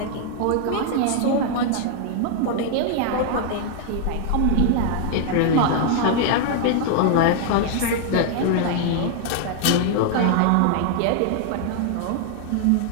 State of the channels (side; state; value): both; different; correlation 0.00